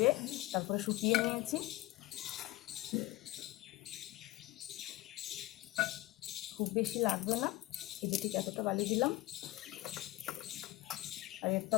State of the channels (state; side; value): quieter; right; 18.2 dB